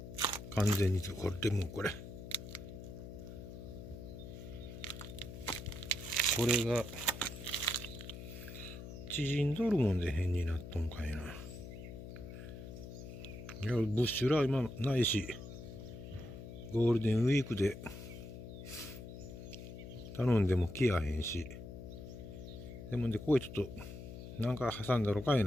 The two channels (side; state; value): left; noise; hum, 11 dB below the sound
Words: 完全にこれでもうこれが縮んどるもんで変になっとんかいな。いやブッシュラ今ないし、ゴールデンウィークで頼んでも来やへんし、でもここへちょっとなんか挟んだろかい